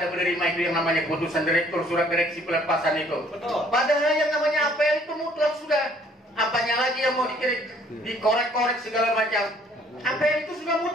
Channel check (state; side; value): normal; both; correlation 0.60